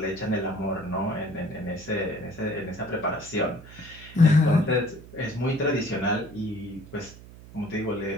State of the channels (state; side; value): noise; right; hum, 18 dB below the sound